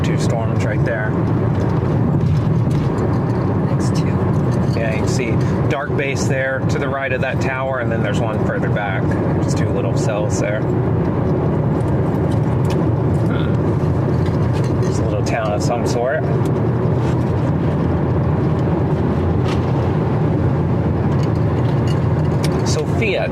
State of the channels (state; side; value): identical; both; correlation 1.00